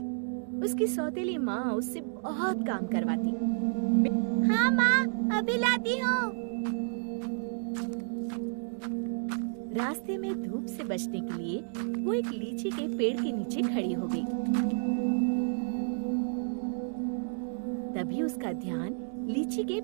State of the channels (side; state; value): left; silent; digital silence